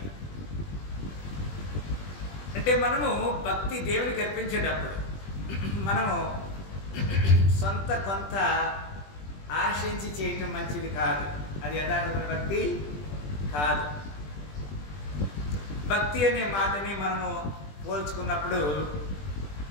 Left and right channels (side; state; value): right; late; 20 ms